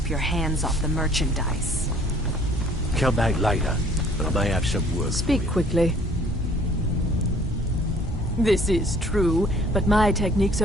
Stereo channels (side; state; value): both; normal; correlation 0.56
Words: your hands off the merchandise. Come back later, but I may have some work. Speak quickly. This is true, but my techniques